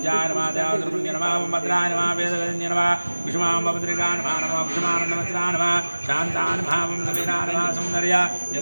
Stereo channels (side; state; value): both; inverted; correlation -1.00